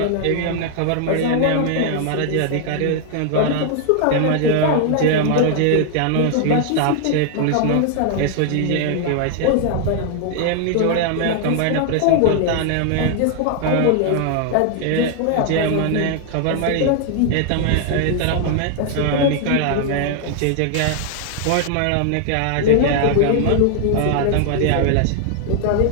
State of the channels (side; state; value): both; different; correlation 0.00